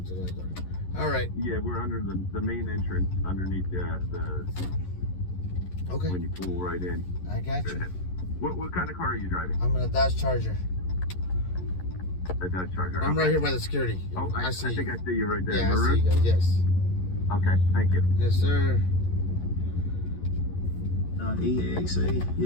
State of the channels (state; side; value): late; right; 11 ms